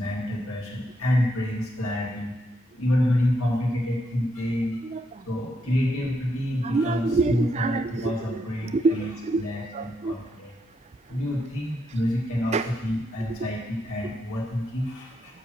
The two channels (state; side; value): normal; both; correlation 0.79